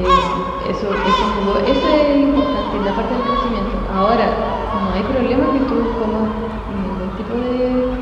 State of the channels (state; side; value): identical; both; correlation 1.00